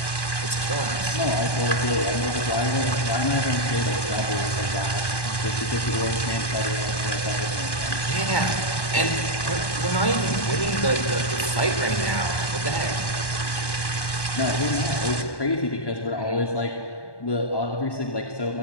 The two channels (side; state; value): right; late; 1.1 ms